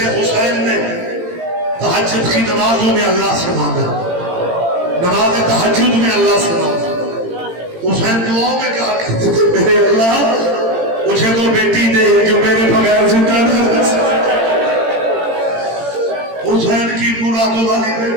حسین نے تہجد کی نمازوں میں اللہ سے مانگا نماز تہجد میں اللہ سے مانگا حسین دعاؤں میں کہا کرتے تھے میرے اللہ مجھے تو بیٹی دے جو میرے بغیر زندہ نہ رہ سکے حسین کی مرادوں والی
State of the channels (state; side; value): late; left; 18 ms